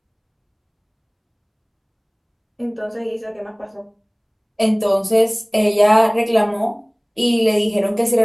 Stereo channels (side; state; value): both; identical; correlation 1.00